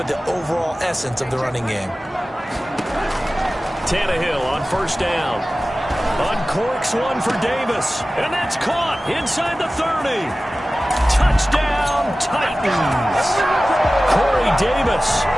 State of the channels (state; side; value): normal; both; correlation 0.96